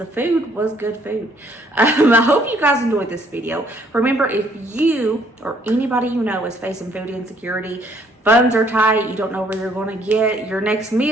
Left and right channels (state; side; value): normal; both; correlation 0.64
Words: food was good food. I hope you guys enjoyed this video. Remember, if you or anybody you know is facing food insecurity, funds are tight, you don't know where you're going to get your next